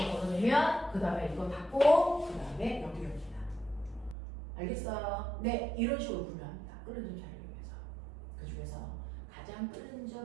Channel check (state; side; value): drops out; left; at 4.2 s